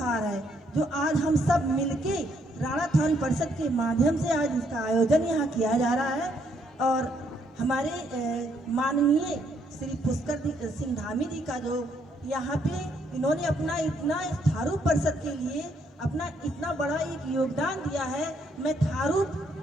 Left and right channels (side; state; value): both; normal; correlation 0.71